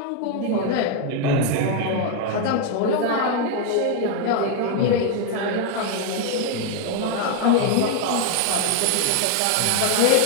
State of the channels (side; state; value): both; different; correlation 0.01